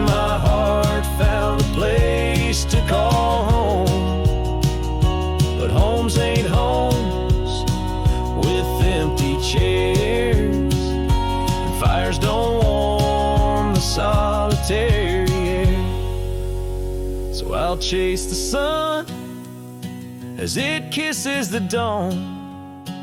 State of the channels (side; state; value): both; identical; correlation 1.00